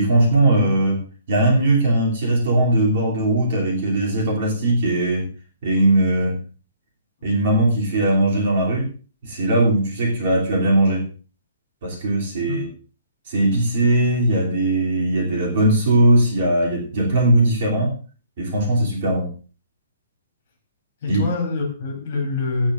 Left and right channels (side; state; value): both; inverted; correlation -0.65